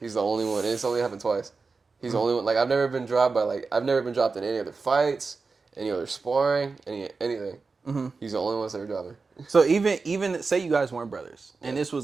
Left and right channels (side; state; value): left; quieter; 4.3 dB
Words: He's the only one, and it's only happened twice. He's the only one. Like I've never been dropped in any other fights, any other sparring, anything. He's the only one that's ever dropped me. So even say you guys weren't brothers, and this